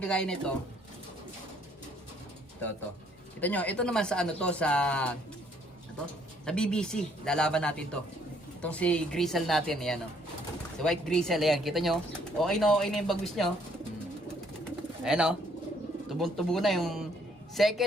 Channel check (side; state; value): both; normal; correlation 0.65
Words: nito. Ito. Kita nyo, ito naman sa ano to, sa BBC. Lalaban natin to. Itong si Grizzle natin, ayan o. Si White Grizzle, ayan. Kita nyo, okay na yung bagwis nyo. Ayan o. Tubong-tubo na yung